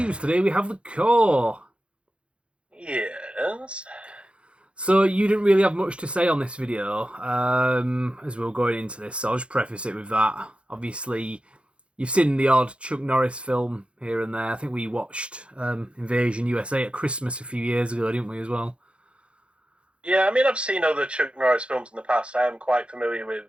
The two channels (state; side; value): late; left; 0.058 ms